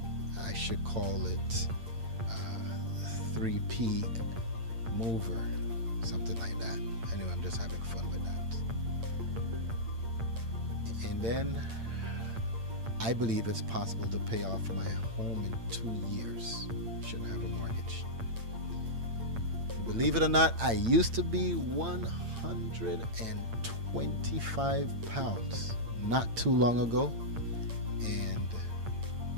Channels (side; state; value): left; late; 8.8 ms